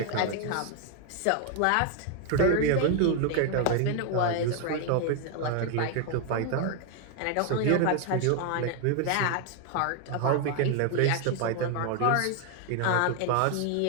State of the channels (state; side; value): different; both; correlation 0.01